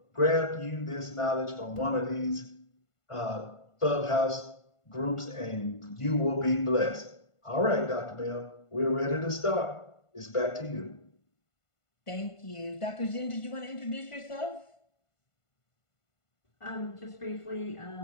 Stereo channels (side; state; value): right; late; 1.5 ms